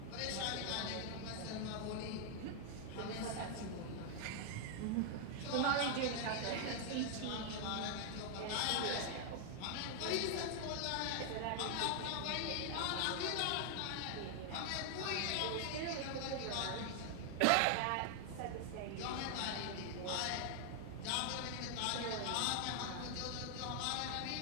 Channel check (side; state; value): both; different; correlation 0.00